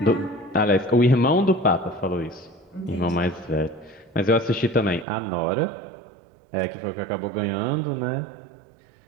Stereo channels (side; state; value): left; drops out; at 5.1 s